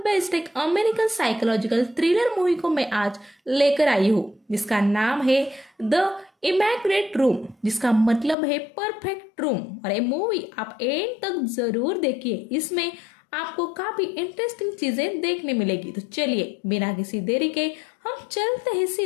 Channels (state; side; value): drops out; right; at 8.3 s